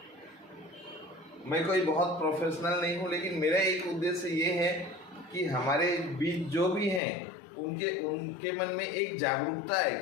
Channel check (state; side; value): drops out; right; at 7.0 s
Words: मैं कोई बहुत प्रोफेशनल नहीं हूँ, लेकिन मेरा एक उद्देश्य ये है कि हमारे बीच जो भी हैं उनके मन में एक जागरूकता है,